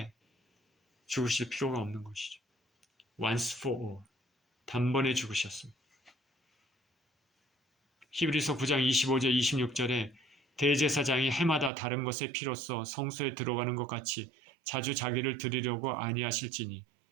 죽으실 필요가 없는 것이죠. Once for all. 단번에 죽으셨습니다. 히브리서 9장 25절 26절에 대제사장이 해마다 다른 것의 피로써 성소에 들어가는 것 같이 자주 자기를 드리려고 아니하실지니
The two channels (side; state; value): left; drops out; at 11.7 s